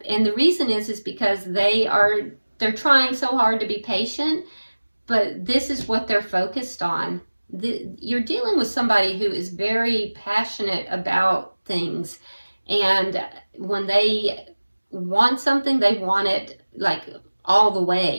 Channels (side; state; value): both; inverted; correlation -1.00